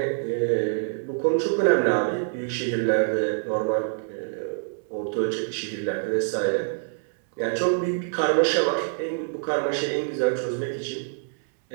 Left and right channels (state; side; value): silent; left; digital silence